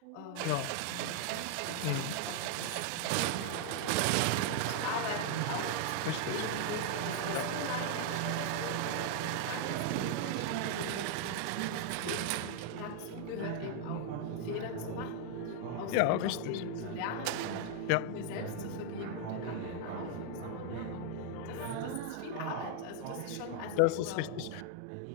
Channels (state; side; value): different; both; correlation 0.00